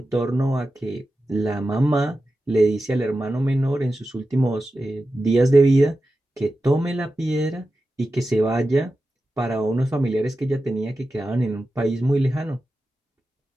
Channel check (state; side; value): normal; both; correlation 0.92